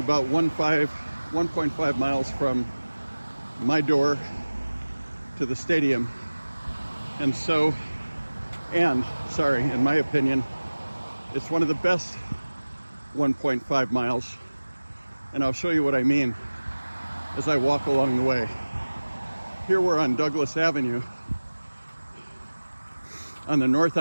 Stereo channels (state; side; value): inverted; both; correlation -1.00